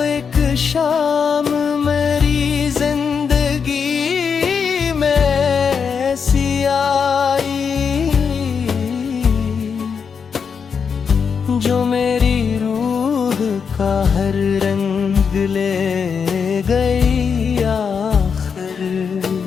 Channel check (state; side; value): quieter; right; 6.3 dB